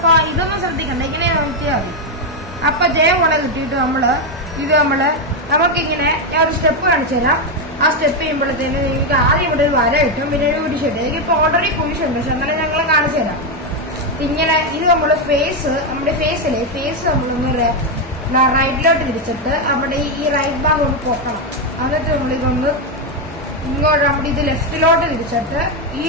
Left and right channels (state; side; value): normal; both; correlation 0.05